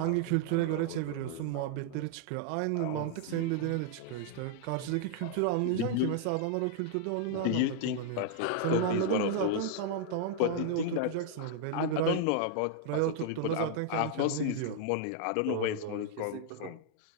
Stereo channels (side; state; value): both; different; correlation 0.00